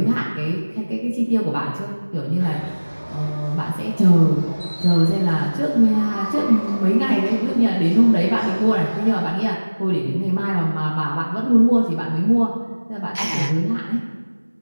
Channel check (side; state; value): both; inverted; correlation -1.00